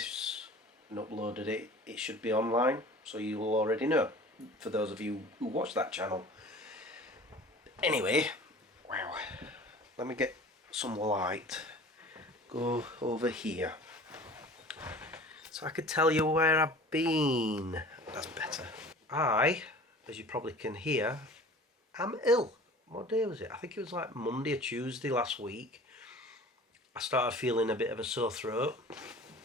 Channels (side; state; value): both; normal; correlation 0.43